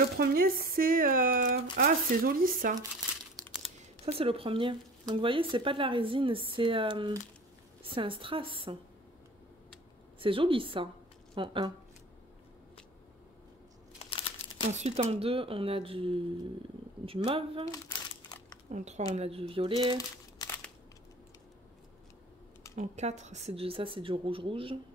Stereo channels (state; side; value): normal; both; correlation 0.42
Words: premier, c'est... Ah, c'est joli, ça. Ça, c'est le premier. Donc, vous voyez, c'est pas de la résine, c'est un strass. C'est joli, ça, en 1. Ensuite, en 2, on a du mauve. En 3, on a du violet. En 4, ça, c'est du rouge-rouge.